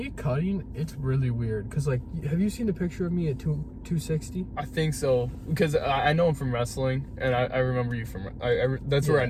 cutting, it's really weird. Cause like, have you seen the picture of me at 260? I think so. Because I know him from wrestling, and I remember you from. That's where I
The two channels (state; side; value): identical; both; correlation 1.00